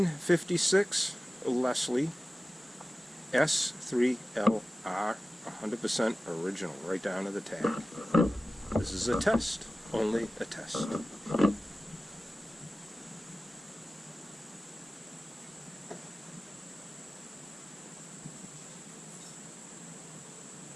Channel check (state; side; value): normal; both; correlation 0.96